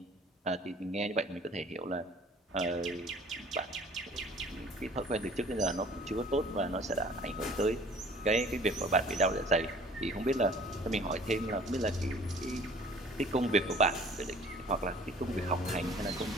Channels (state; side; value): normal; both; correlation 0.51